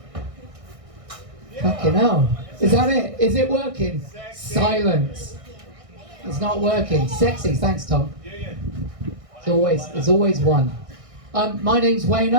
Fucking hell. Is that it? Is it working? Silence. It's not working. Sexy. Thanks, Tom. It's always one. My name's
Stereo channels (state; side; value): late; left; 1.6 ms